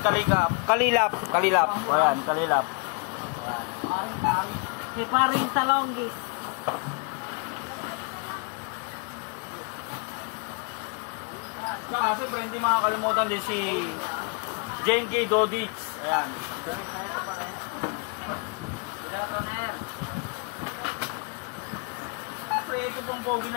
Kalilap. Ayan, Kalilap. Si paring Talonggis. Saka siyempre, hindi makakalimutan din si Jane K. Dodich. Ayan. Siyempre, ito pong pogi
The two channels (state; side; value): quieter; right; 35.6 dB